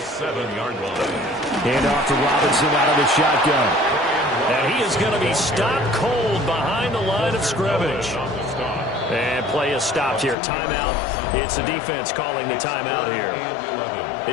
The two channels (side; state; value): right; drops out; at 10.4 s